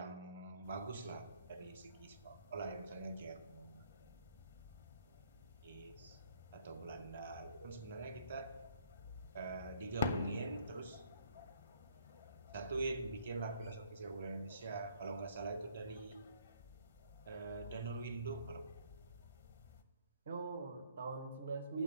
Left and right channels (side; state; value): both; inverted; correlation -0.63